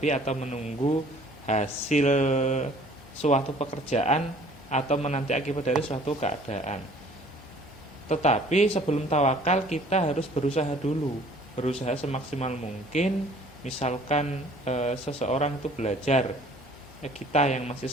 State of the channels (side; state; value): both; normal; correlation 0.53